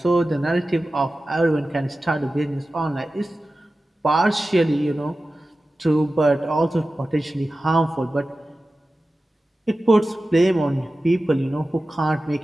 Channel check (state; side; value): normal; both; correlation 0.95